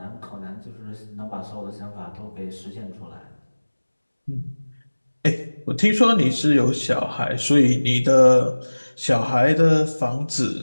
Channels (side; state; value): both; inverted; correlation -1.00